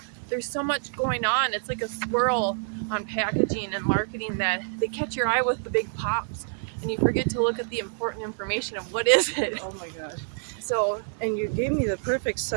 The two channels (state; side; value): silent; left; 60 dB below the other